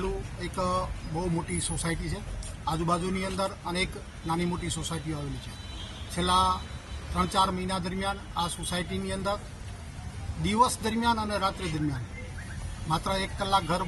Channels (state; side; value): identical; both; correlation 1.00